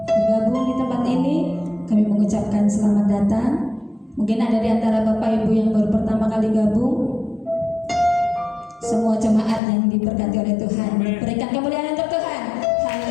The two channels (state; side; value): drops out; right; at 9.6 s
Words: bergabung di tempat ini. Kami mengucapkan selamat datang. Mungkin ada di antara Bapak Ibu yang baru pertama kali gabung. Semua jemaat yang diberkati oleh Tuhan, berikan kemuliaan untuk Tuhan.